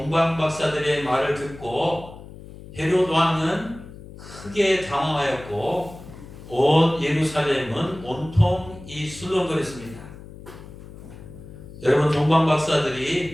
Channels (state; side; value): noise; left; hum, 16 dB below the sound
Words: 박사들의 말을 듣고 헤롯 왕은 크게 당황하였고 온 예루살렘은 온통 이 술렁거렸습니다. 여러분 동방